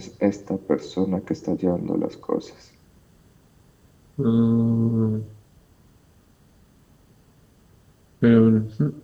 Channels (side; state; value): both; identical; correlation 1.00